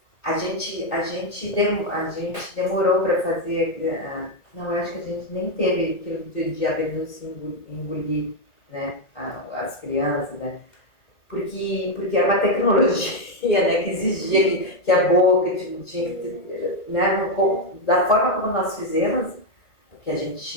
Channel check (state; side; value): late; right; 2.0 ms